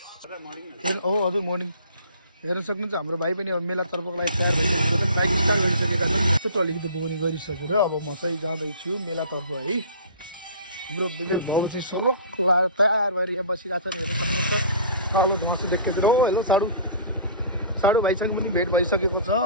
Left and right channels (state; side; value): inverted; both; correlation -0.45